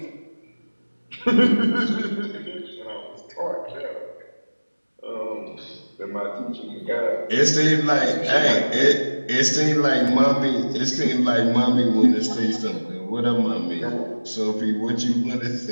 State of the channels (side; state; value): both; inverted; correlation -1.00